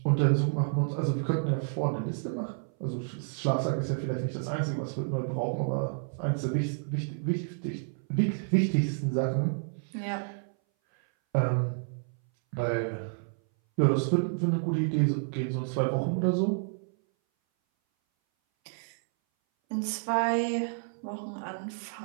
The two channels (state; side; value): silent; left; 58 dB below the other